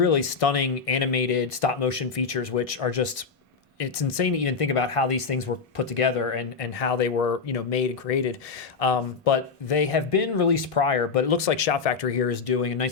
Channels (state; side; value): quieter; right; 5.2 dB